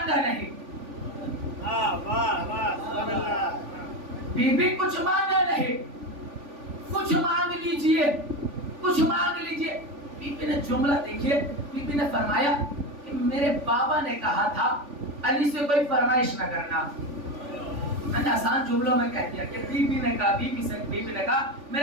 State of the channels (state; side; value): late; left; 3.5 ms